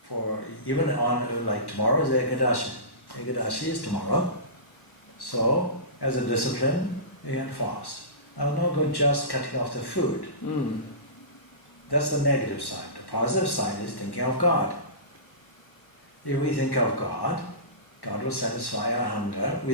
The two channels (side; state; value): right; late; 1.1 ms